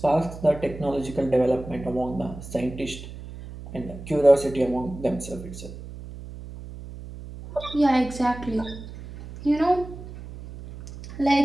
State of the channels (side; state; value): right; noise; hum, 13 dB below the sound